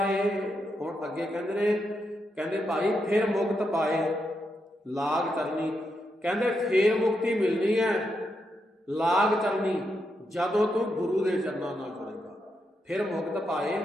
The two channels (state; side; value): normal; both; correlation 0.83